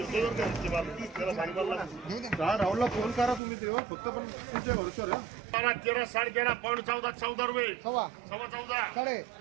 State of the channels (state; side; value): drops out; left; at 3.4 s